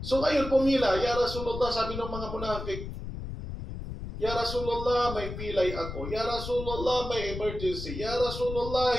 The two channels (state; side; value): noise; left; rumble, 8 dB below the sound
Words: So ngayon pumila, Ya Rasulullah, sabi ng mga munafik, Ya Rasulullah, may pilay ako. Ya Rasulullah, may emergency. Ya Rasulullah,